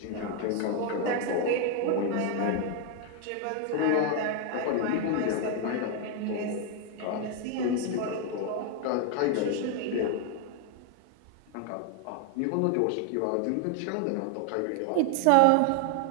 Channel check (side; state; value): both; different; correlation 0.00